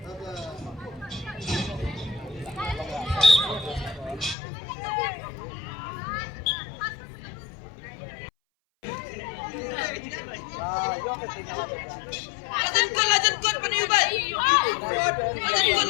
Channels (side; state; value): right; drops out; at 4.4 s